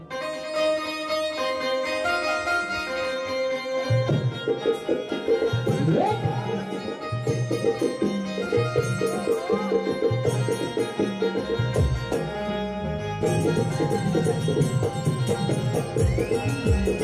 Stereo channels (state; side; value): identical; both; correlation 1.00